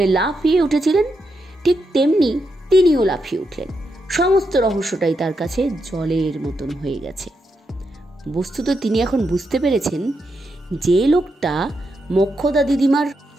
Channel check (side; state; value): both; normal; correlation 0.83